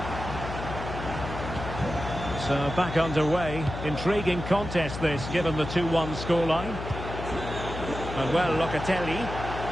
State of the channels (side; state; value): left; noise; hum, 8 dB below the sound